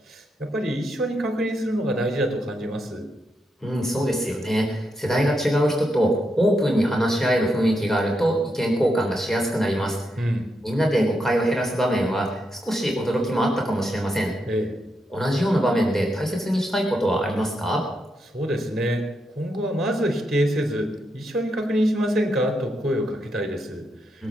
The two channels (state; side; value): normal; both; correlation 0.82